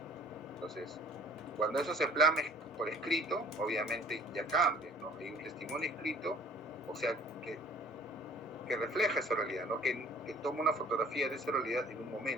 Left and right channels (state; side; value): normal; both; correlation 0.52